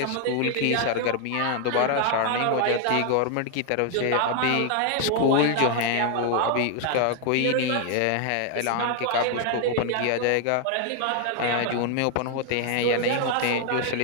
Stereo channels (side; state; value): both; different; correlation 0.00